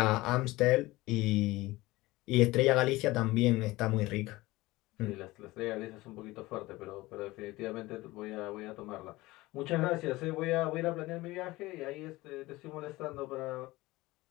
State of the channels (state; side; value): quieter; right; 19.7 dB